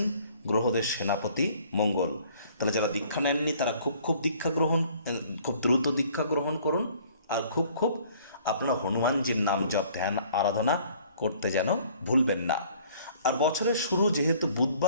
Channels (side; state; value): both; inverted; correlation -0.56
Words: গ্রহদের সেনাপতি মঙ্গল। তাহলে যারা দীক্ষা নেননি তারা খুব দ্রুত দীক্ষা গ্রহণ করুন, আর খুব আপনারা হনুমানজির নাম জপ ধ্যান আরাধনা করতে যেন ভুলবেন না। আর বছরের শুরু যেহেতু